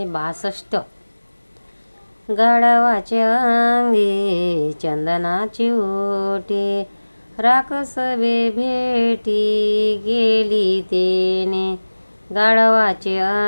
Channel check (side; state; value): both; inverted; correlation -1.00